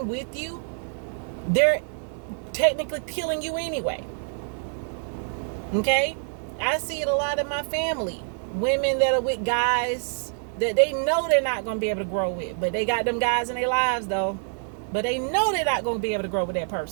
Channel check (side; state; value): left; silent; 61 dB below the other